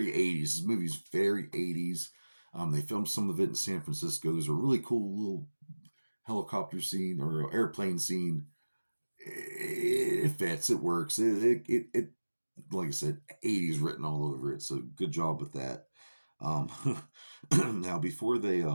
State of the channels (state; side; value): inverted; both; correlation -1.00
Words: 80s. This movie's very 80s. They filmed some of it in San Francisco. There's a really cool little helicopter scene or airplane scene. It fits. It works. It like I said, 80s written all over it. So good job with that. Now before they